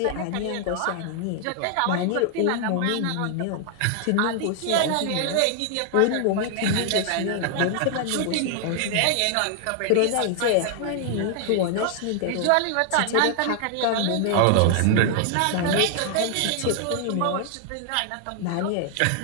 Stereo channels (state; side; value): different; both; correlation 0.00